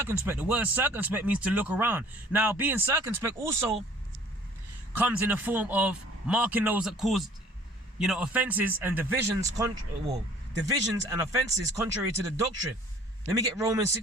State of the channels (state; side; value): normal; both; correlation 0.53